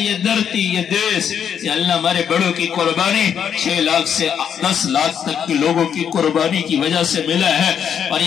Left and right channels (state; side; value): quieter; right; 8.2 dB